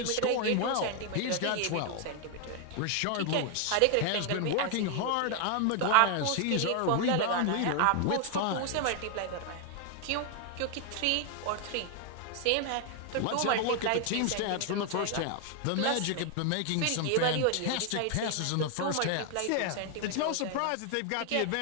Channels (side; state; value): both; different; correlation 0.00